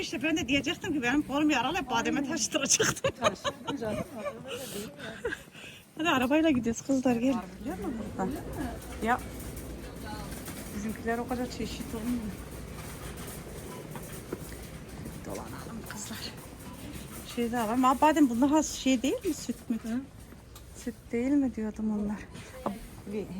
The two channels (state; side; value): identical; both; correlation 1.00